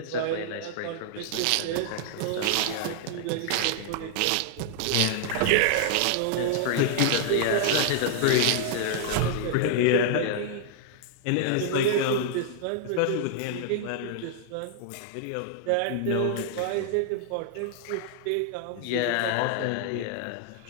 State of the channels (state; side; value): different; both; correlation -0.01